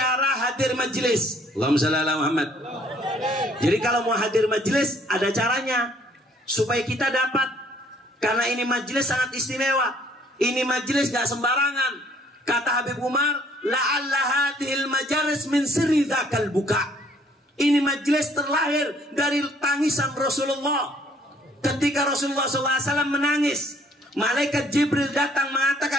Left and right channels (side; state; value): both; normal; correlation 0.61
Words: hadir majelis. Allahumma shalli ala Muhammad. Jadi kalau mau hadir majelis ada caranya supaya kita dapat Karena ini majelis sangat istimewa. Ini majelis gak sembarangan. Kata Habib Umar, la'alla hadhil majalis min sirri dzakal buka. Ini majelis terlahir dari tangisan Rasulullah. Ketika Rasulullah SAW menangis, malaikat Jibril datang